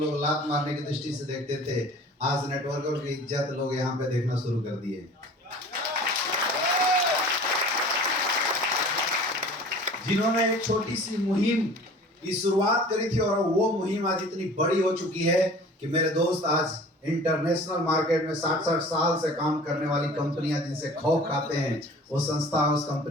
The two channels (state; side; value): normal; both; correlation 0.44